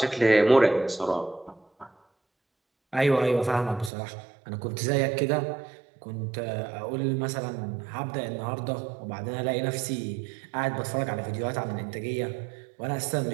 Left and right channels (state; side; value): drops out; left; at 3.9 s